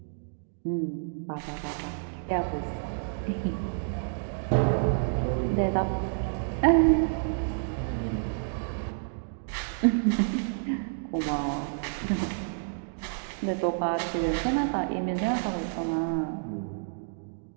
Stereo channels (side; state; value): left; silent; digital silence